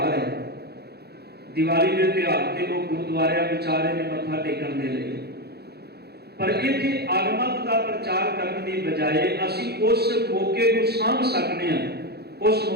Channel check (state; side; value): late; left; 0.47 ms